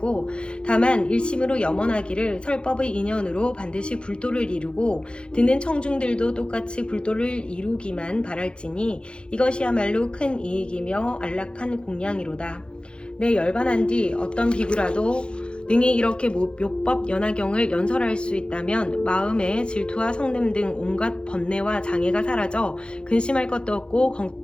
다만 일심으로 염원하기를 설법의 인연으로 반드시 불도를 이루고 듣는 청중들도 똑같이 불도를 이루기만 바랄지니 이것이야말로 큰 이익이며 안락한 공양이로다. 내 열반한 뒤 어떤 비구라도 능히 이렇게 묘법 연화경을 연설할 수 있다면 마음의 질투와 성냄 등 온갖 번뇌와 장애가 사라져 근심할 것도 없고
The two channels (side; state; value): right; late; 0.054 ms